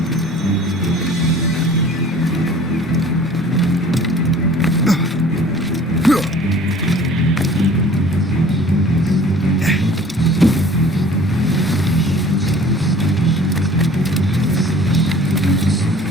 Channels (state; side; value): normal; both; correlation 0.49